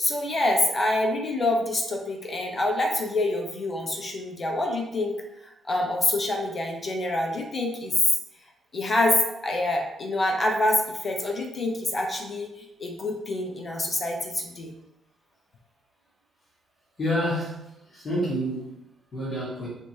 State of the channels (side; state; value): both; normal; correlation 0.79